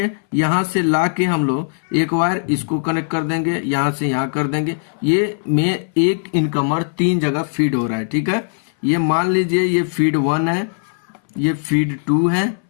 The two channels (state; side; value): silent; right; 61 dB below the other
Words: यहाँ से ला के हम लोग एक वायर इसको कनेक्ट कर देंगे, यहाँ से यहाँ कर देंगे। ये में एक इनकमर 3 जगह फीड हो रहा है। ठीक है, ये मान लीजिए ये फीड 1 है, ये फीड 2 है,